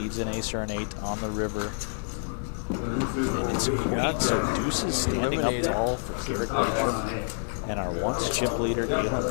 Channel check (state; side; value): silent; right; 60 dB below the other